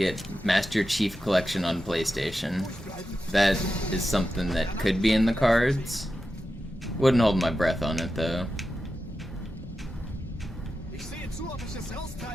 Master Chief Collection on PlayStation. That is something that could be in the cards. Wouldn't hold my breath on it though.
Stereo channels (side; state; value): both; normal; correlation 0.91